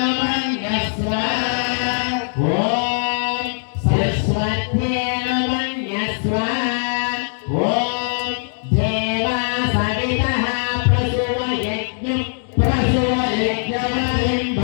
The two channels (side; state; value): right; silent; digital silence